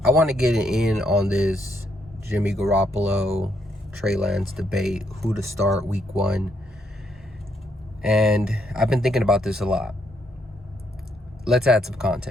I want to get in on this Jimmy Garoppolo, Trey Lance debate, who to start week one. And I've been thinking about this a lot. Let's add some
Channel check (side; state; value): both; normal; correlation 0.74